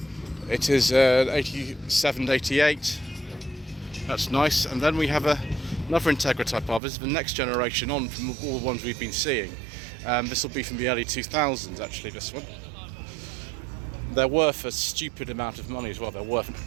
It is 87 to 88. That's nice. And then we have another Integra type R. This is the next generation on from all the ones we've been seeing. This will be from the early 2000s, actually, this one. They're worth a stupid amount of money as well. They're worth an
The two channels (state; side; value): drops out; left; at 6.8 s